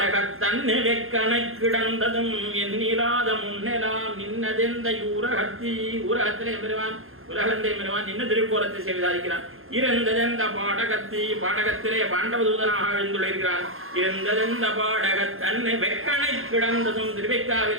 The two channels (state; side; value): late; left; 0.60 ms